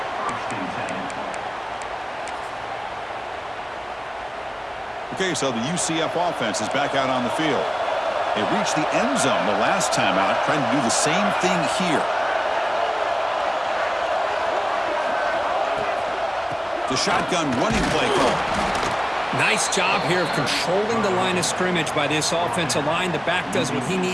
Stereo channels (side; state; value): both; identical; correlation 1.00